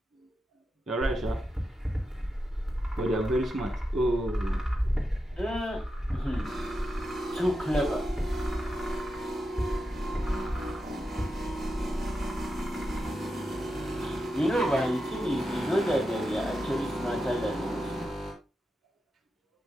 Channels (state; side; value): normal; both; correlation 0.88